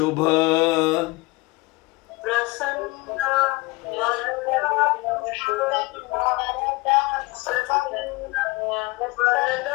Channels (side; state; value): right; quieter; 23.1 dB